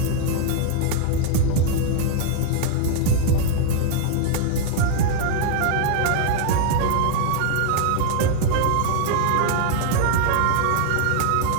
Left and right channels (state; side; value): different; both; correlation 0.00